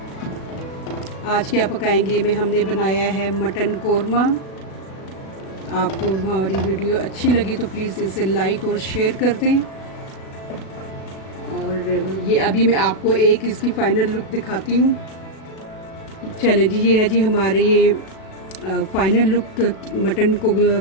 आज क्या पकाएंगे में हमने बनाया है मटन कोरमा। आपको हमारी वीडियो अच्छी लगी तो प्लीज़ इसे लाइक और शेयर कर दें। और ये अभी मैं आपको एक इसकी फ़ाइनल लुक दिखाती हूँ। चले जी, ये है जी हमारे ये फ़ाइनल लुक मटन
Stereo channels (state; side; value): late; right; 37 ms